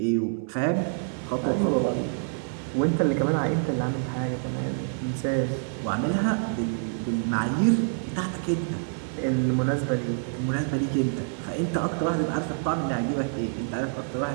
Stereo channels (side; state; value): left; silent; 60 dB below the other